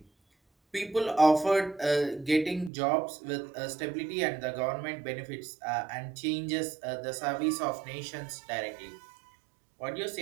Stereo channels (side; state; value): left; drops out; at 2.7 s